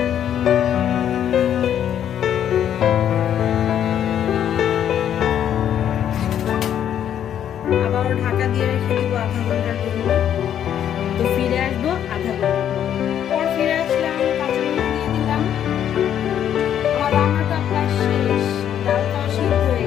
আবারও ঢাকা দিয়ে রেখে দিব আধা ঘন্টার জন্য। তো ফিরে আসবো আধা ঘন্টা পর। ফিরে আসলাম, কাঁচামরিচ দিয়ে দিলাম। আমার রান্নাটা প্রায় শেষ, ডালটাও সিদ্ধ হয়ে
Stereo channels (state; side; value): quieter; right; 9.9 dB